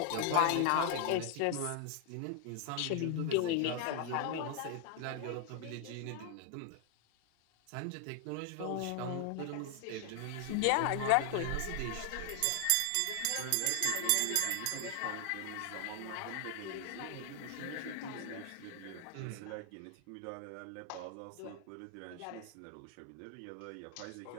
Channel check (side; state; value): both; different; correlation 0.00